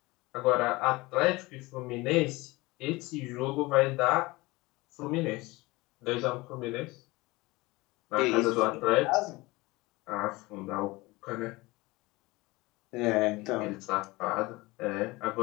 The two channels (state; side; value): quieter; right; 22.0 dB